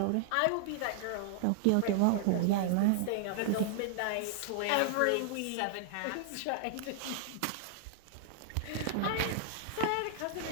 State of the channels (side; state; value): both; different; correlation -0.01